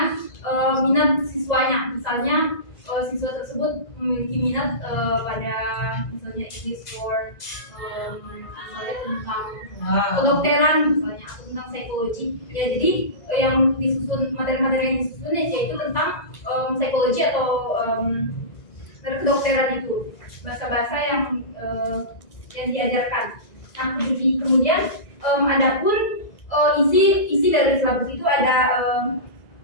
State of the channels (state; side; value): late; right; 2.0 ms